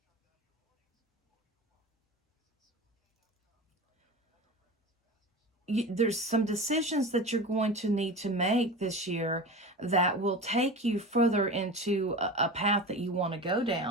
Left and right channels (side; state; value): both; normal; correlation 0.31